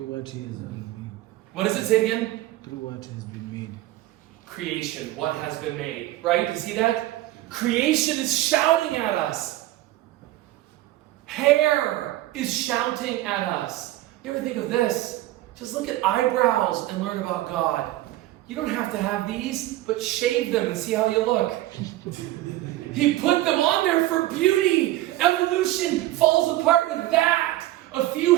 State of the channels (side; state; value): left; quieter; 15.8 dB